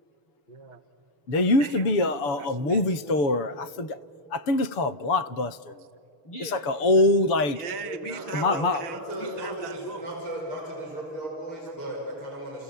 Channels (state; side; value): late; right; 7.0 ms